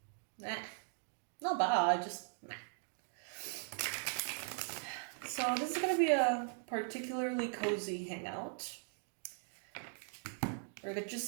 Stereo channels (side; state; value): left; silent; 51 dB below the other